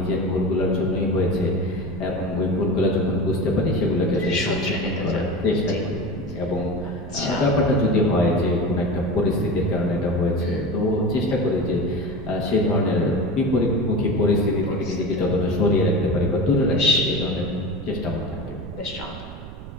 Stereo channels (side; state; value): right; noise; rumble, 13 dB below the sound